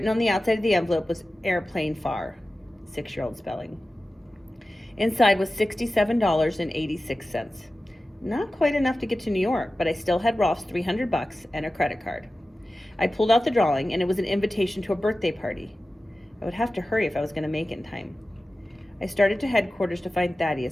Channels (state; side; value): normal; both; correlation 0.95